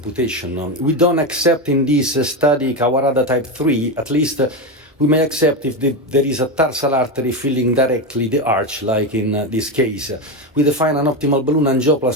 We don't accept in this study Kawarada type 3, at least we may accept if there is a tarsal artery filling directly the arch, like in this case. We define an optimal balloon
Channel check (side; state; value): both; normal; correlation 0.14